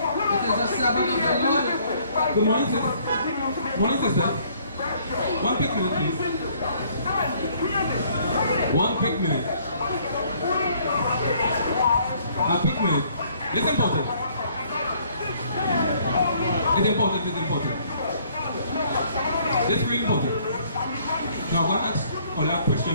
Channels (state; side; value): inverted; both; correlation -0.62